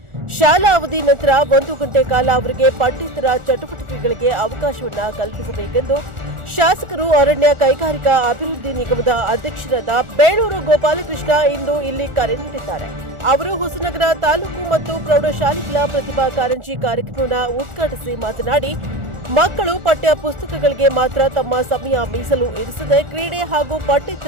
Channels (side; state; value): left; late; 1.4 ms